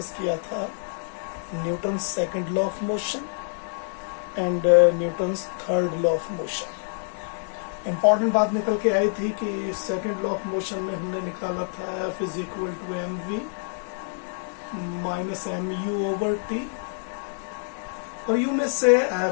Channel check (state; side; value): silent; right; digital silence